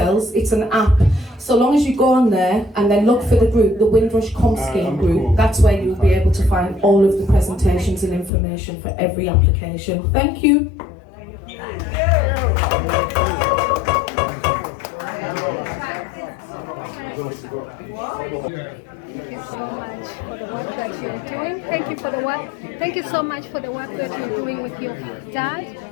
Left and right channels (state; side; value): drops out; right; at 8.3 s